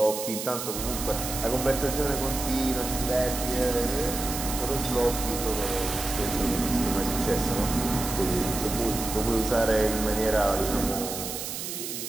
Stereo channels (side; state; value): right; noise; hiss, 6 dB below the sound